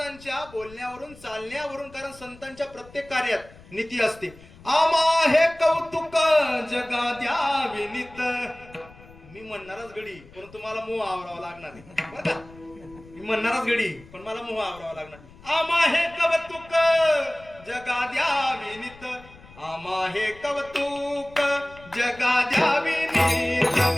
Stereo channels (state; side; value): noise; left; rumble, 22 dB below the sound